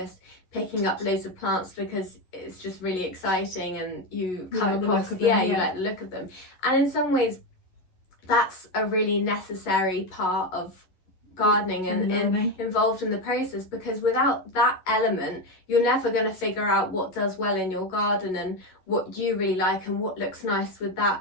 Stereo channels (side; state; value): right; late; 11 ms